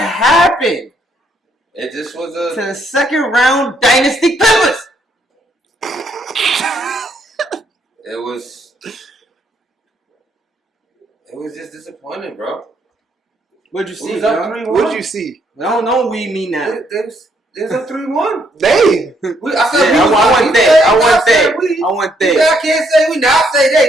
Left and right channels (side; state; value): both; normal; correlation 0.72